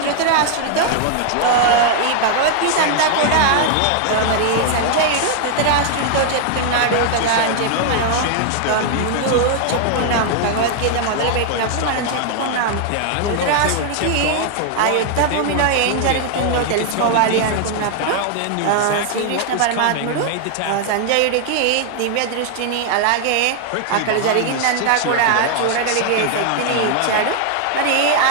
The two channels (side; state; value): both; different; correlation 0.00